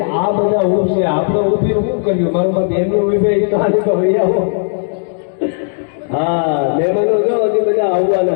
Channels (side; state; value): right; silent; digital silence